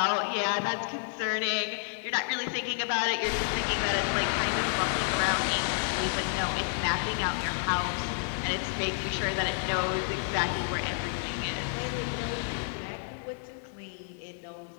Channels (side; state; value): right; silent; digital silence